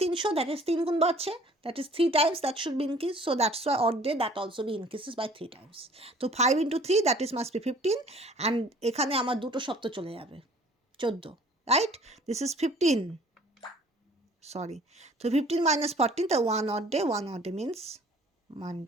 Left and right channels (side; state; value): both; normal; correlation 0.52